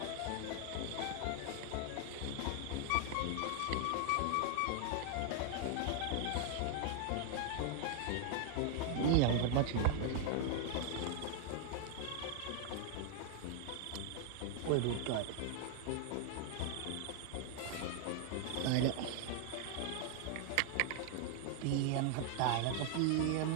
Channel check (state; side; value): different; both; correlation 0.00